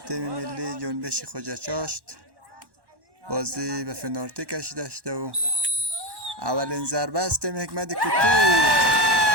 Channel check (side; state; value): left; late; 1.1 ms